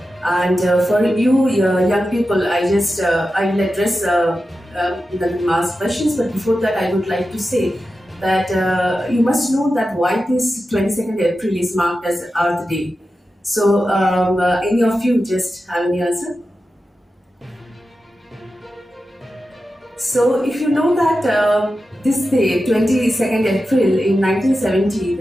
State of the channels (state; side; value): normal; both; correlation 0.92